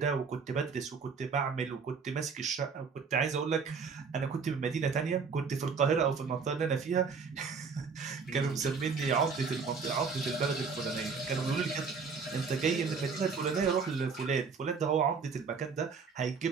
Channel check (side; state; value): left; quieter; 5.3 dB